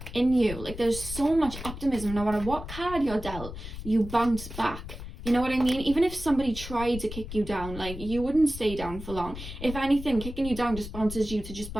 in you. Like, there's so much optimism. No matter what card you're dealt, you bounce back. You know what I mean? Even if somebody tried to kick you down, like, you wouldn't stay down for long. If anything, kicking you down just bounces you to just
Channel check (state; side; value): noise; left; rumble, 10 dB below the sound